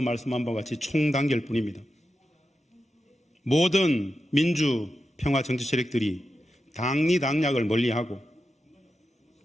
바와 같이 총단결뿐입니다. 모든 민주평화 정치 세력들이 당리당략을 멀리하고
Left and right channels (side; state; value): both; normal; correlation 0.90